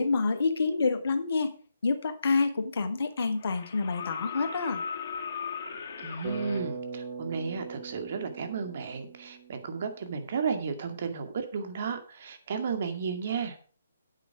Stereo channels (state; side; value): inverted; both; correlation -0.78